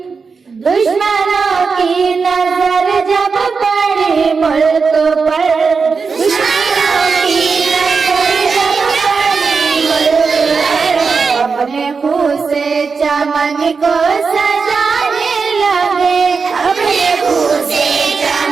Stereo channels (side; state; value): left; quieter; 5.1 dB